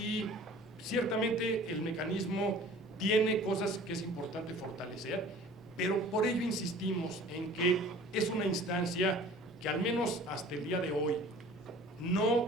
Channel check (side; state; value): both; normal; correlation 0.47